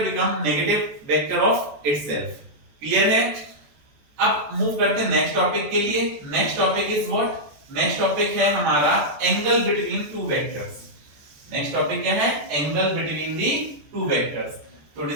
become negative vector of itself. Clear है? अब move करते हैं next topic के लिए. Next topic is what? Next topic है हमारा angle between two vectors. Next topic क्या है? Angle between the to vectors. तो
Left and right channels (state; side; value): late; left; 14 ms